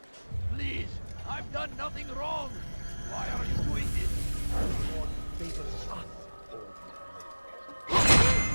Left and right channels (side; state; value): both; inverted; correlation -1.00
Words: Please! I've done nothing wrong! Why are you doing this? God favors us.